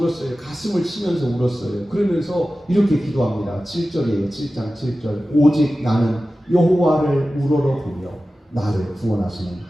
가슴을 치면서 울었어요. 그러면서 이렇게 기도합니다. 7절이에요. 7장 7절. 오직 나는 여호와를 우러러보며 나를 구원하시는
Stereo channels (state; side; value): normal; both; correlation 0.95